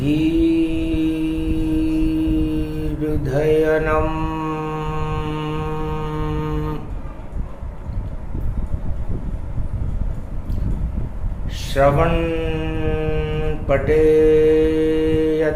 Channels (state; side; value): identical; both; correlation 1.00